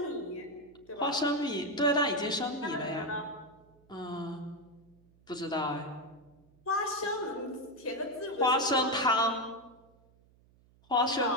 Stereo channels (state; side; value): noise; right; hum, 30 dB below the sound